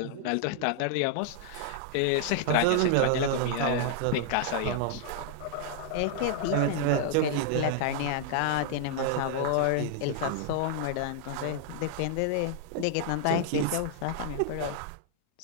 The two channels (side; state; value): both; different; correlation -0.01